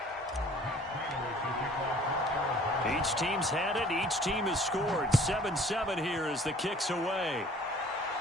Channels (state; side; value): normal; both; correlation 0.52